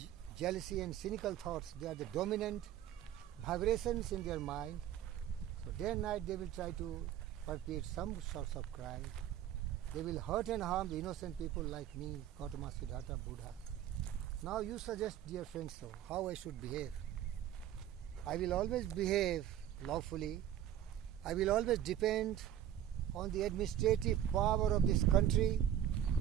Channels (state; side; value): quieter; left; 10.9 dB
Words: jealousy and cynical thoughts, they are the dominant vibrations in their mind. So day and night they will try to perpetrate some sorts of crime. They will hurt and harm the innocent people like me, Gautama, Siddhartha, Buddha. Now you suggest, dear friends, so how I should behave. I will always behave lawfully. I will always depend on the administrative power of this country,